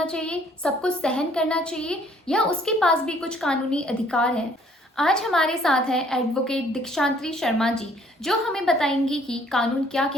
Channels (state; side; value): normal; both; correlation 0.60